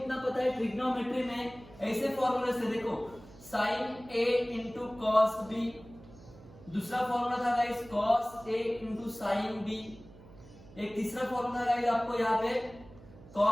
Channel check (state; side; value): noise; right; hum, 20 dB below the sound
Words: पता है ट्रिग्नोमेट्री में ऐसे फॉर्मूले से, देखो sine A into cos B, दूसरा फॉर्मूला था guys cos A into sine B, एक तीसरा फॉर्मूला गाइस आपको यहाँ पे